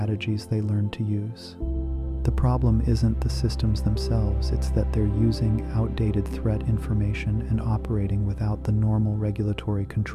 they learned to use. The problem isn't the systems themselves, it's that they're using outdated threat information and operating without the normal regulatory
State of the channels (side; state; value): both; identical; correlation 1.00